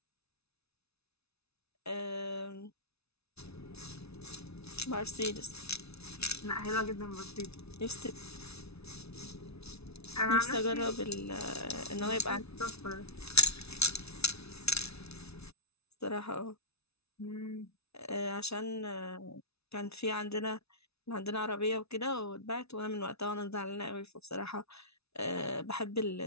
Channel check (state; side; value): late; right; 0.80 ms